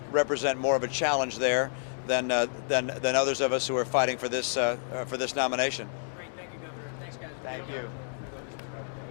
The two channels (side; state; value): right; silent; digital silence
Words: represent more of a challenge there than others of us who are fighting for this nomination. Great, thank you, Governor. Thanks, guys. Thank you.